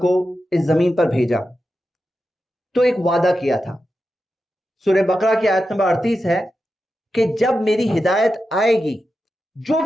اس زمین پر بھیجا تو ایک وعدہ کیا تھا۔ سورہ بقرہ کی آیت نمبر 38 ہے کہ جب میری ہدایت آئے گی، جو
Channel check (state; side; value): normal; both; correlation 0.90